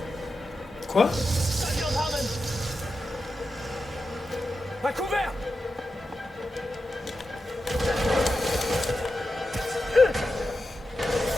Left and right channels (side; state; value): both; normal; correlation 0.90